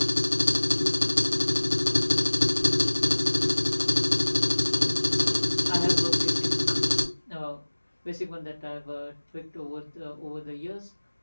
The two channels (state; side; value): inverted; both; correlation -1.00